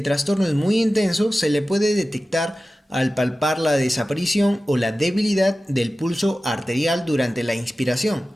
trastorno es muy intenso, se le puede detectar al palpar la desaparición o la debilidad del pulso arterial durante la inspiración,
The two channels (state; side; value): normal; both; correlation 0.95